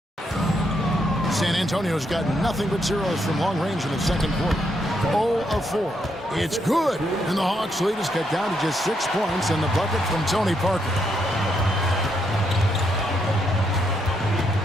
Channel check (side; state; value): both; normal; correlation 0.77